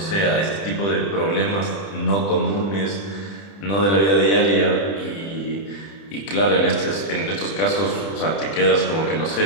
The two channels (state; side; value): late; right; 30 ms